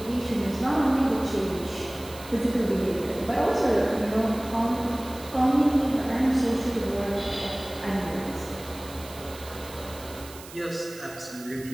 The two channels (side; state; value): right; noise; hiss, 17 dB below the sound